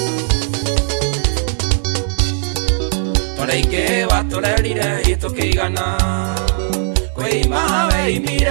toreike waturerire itukigana kwima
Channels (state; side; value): silent; left; digital silence